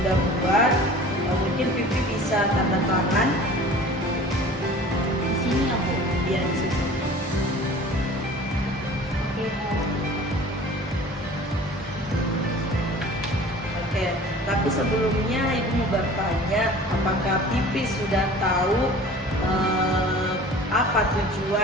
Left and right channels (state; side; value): normal; both; correlation 0.44